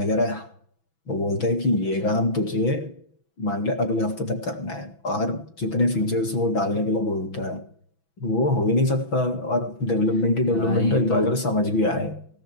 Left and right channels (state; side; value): late; right; 6.1 ms